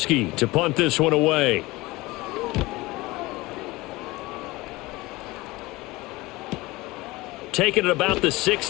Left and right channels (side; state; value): right; quieter; 21.0 dB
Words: to punt this one away. Taking it about the